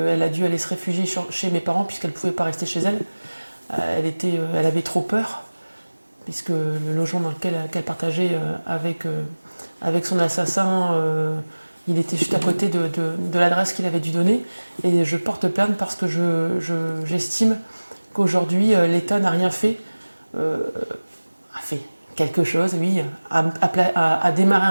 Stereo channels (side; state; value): both; inverted; correlation -1.00